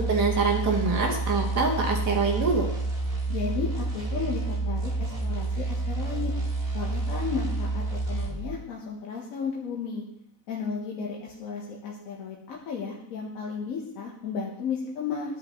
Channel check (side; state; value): right; late; 4.0 ms